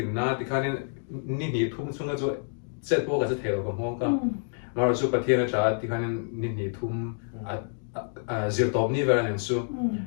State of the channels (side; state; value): right; silent; digital silence